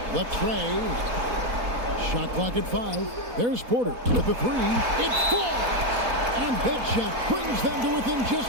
Latrey. Shot clock at 5. There's Porter with the 3. It falls! And that shot brings them to within just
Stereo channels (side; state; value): left; late; 4.1 ms